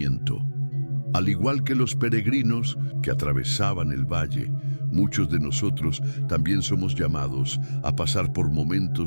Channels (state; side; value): inverted; both; correlation -1.00